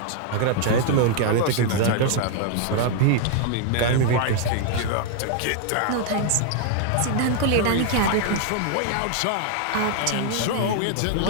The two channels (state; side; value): different; both; correlation 0.00